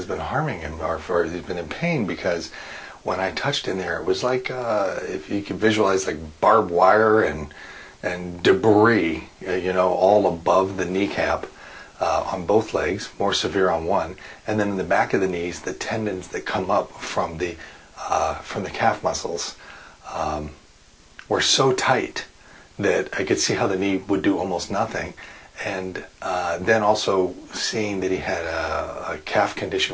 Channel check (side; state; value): both; identical; correlation 1.00